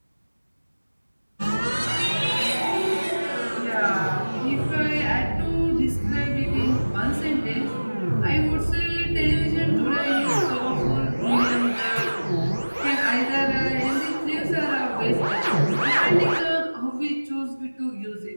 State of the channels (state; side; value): inverted; both; correlation -1.00